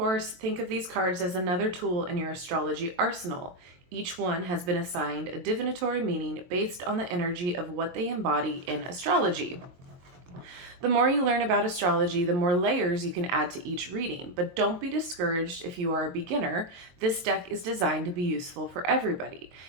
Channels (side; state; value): left; late; 23 ms